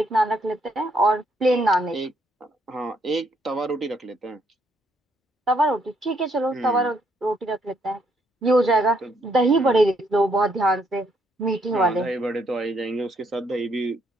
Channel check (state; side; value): normal; both; correlation 0.72